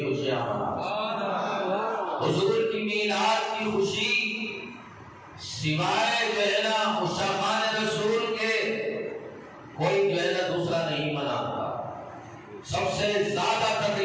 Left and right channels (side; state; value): both; identical; correlation 1.00